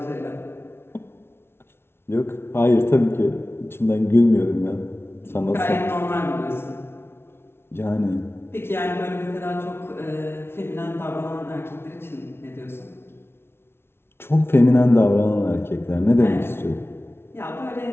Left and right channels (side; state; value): right; late; 0.12 ms